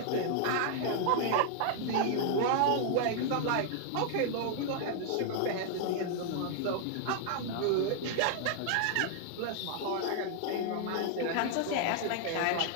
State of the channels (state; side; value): different; both; correlation 0.00